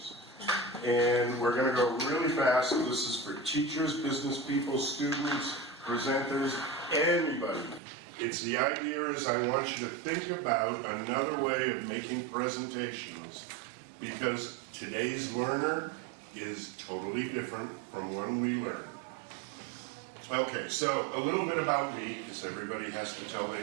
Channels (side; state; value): left; drops out; at 7.8 s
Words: And we're going to go really fast. This is for teachers, business people, students, presenters, anybody. It's the idea is I want you to think about another way of making presentations, because today's learner is totally different from when we learned. Okay, so a little bit about me, because everybody has to tell